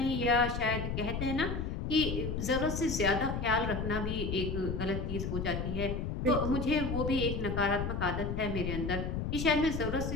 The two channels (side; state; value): left; noise; rumble, 3 dB below the sound